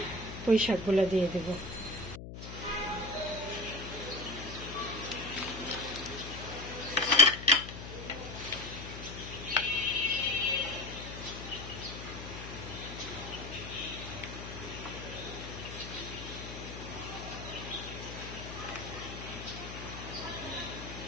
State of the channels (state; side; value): noise; left; hum, 10 dB below the sound